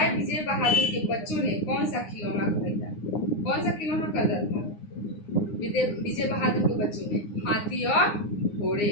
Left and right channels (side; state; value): right; late; 9.7 ms